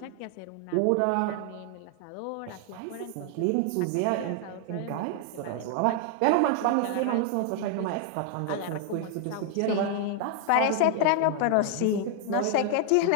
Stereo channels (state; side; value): different; both; correlation 0.00